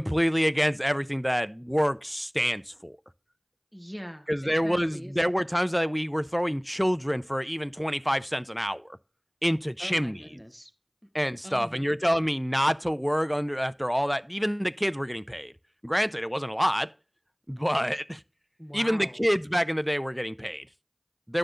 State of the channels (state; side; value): identical; both; correlation 1.00